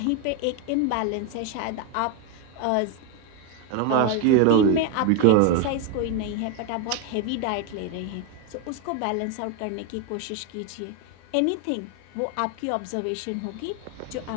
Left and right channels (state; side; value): different; both; correlation 0.02